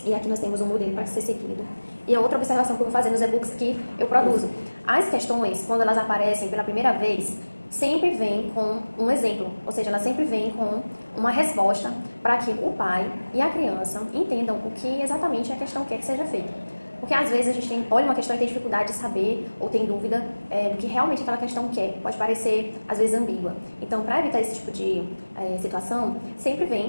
E aqui nós temos um modelo para ser seguido. E a outra observação que eu vou fazer nos e-books que eu produzo. As questões, quando elas aparecem pela primeira vez, sempre vem com um exemplo, ou seja, ela sempre vem com uma resposta para que o pai e a criança entendam o que exatamente a questão quer que seja feito. Porque às vezes a gente olha uma questão e tem dificuldade de saber ou tem dúvida do que realmente aquela questão quer. Pode parecer, às vezes, ambígua. Então, para evitar esse tipo de situação, sempre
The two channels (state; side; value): inverted; both; correlation -1.00